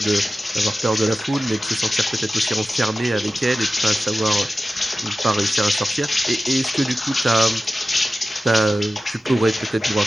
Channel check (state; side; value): normal; both; correlation 0.94